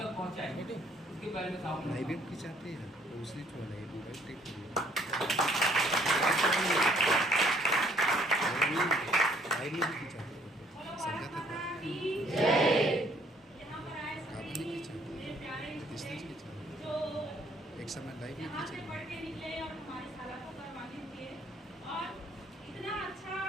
पहुँचाएंगे। उसके बारे में साहू मैडम की चाहते हैं दूसरी एक समय लाइव में यहाँ से पढ़ के निकले और हमारे साला को करवाने दिए और इतना अच्छा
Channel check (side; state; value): both; normal; correlation 0.63